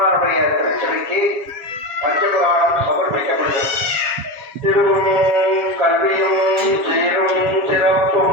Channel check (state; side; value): late; left; 7.3 ms